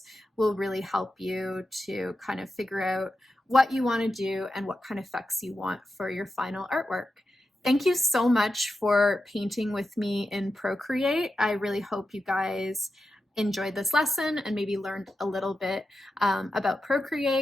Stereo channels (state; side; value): normal; both; correlation 0.89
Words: will really help you to kind of figure out what you want to do and what kind of effects you want for your final artwork. Thank you so much for painting with me in Procreate. I really hope you guys enjoyed this lesson and maybe learned a little bit about